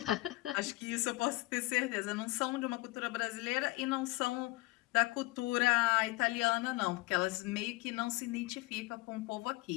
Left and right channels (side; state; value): right; quieter; 21.2 dB